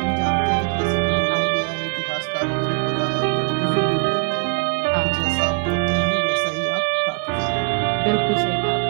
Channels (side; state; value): left; quieter; 33.0 dB